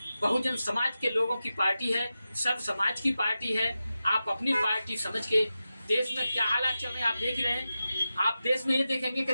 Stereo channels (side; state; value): both; inverted; correlation -0.92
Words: बहुजन समाज के लोगों की पार्टी है, सब समाज की पार्टी है। आप अपनी पार्टी समझ के, देश में क्या हालात चल रहे हैं आप देख रहे हैं। आप देश में ये देखेंगे कि